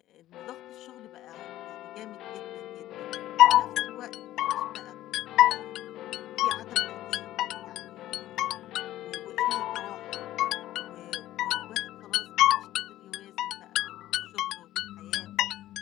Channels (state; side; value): quieter; right; 14.2 dB